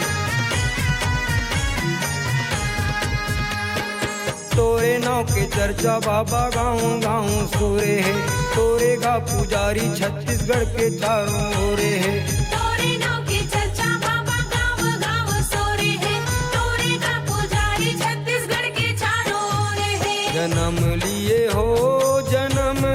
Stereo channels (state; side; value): identical; both; correlation 1.00